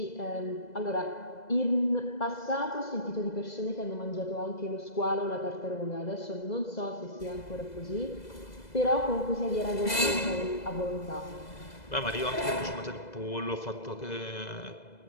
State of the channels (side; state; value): right; late; 2.0 ms